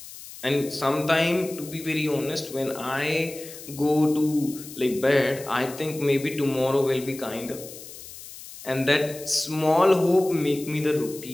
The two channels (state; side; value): noise; left; hiss, 15 dB below the sound